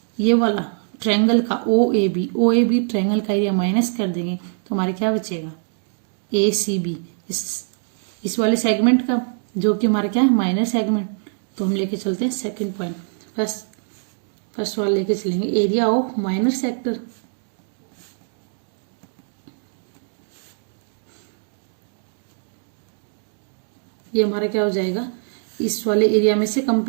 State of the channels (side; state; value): left; silent; digital silence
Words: ये वाला ट्रायंगल का ओ ए बी ट्रायंगल का एरिया माइनस कर देंगे तो हमारे क्या बचेगा ए सी बी इस वाले सेगमेंट का, जो कि हमारा क्या है माइनर सेगमेंट। तो हम लेके चलते हैं सेकंड पॉइंट। फर्स्ट वाला लेके चलेंगे एरिया ऑफ माइनर सेक्टर। ये हमारा क्या हो जाएगा, इस वाले एरिया में से